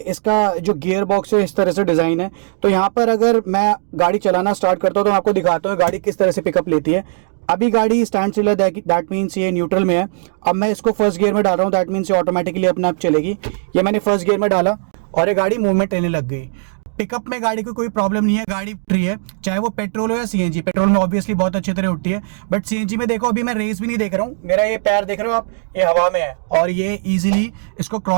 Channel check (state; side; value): silent; left; digital silence